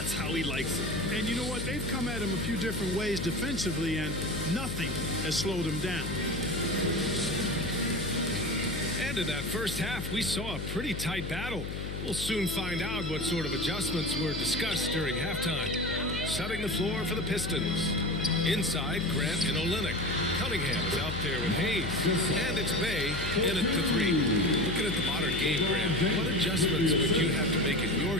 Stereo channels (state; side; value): noise; left; hum, 6 dB below the sound